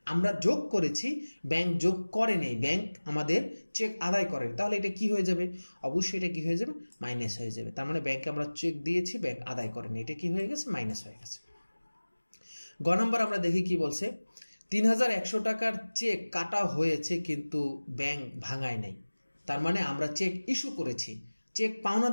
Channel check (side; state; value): both; inverted; correlation -1.00